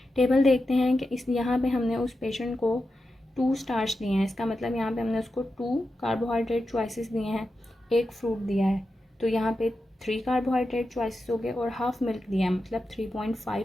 टेबल देखते हैं कि इस यहाँ पे हमने उस पेशेंट को 2 स्टार्च दिए हैं, इसका मतलब यहाँ पे हमने उसको 2 कार्बोहाइड्रेट चॉइसेस दिए हैं, 1 फ्रूट दिया है, तो यहाँ पे 3 कार्बोहाइड्रेट चॉइसेस हो गए, और हाफ मिल्क दिया है, मतलब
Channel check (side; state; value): both; normal; correlation 0.90